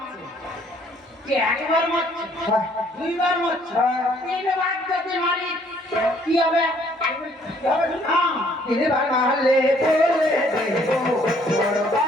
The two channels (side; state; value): both; normal; correlation 0.63